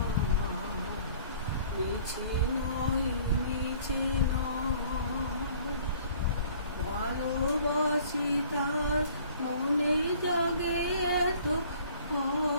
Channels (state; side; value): inverted; both; correlation -0.54